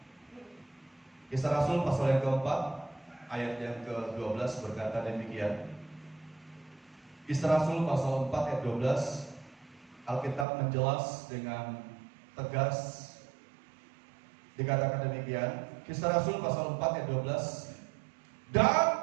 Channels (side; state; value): left; drops out; at 10.5 s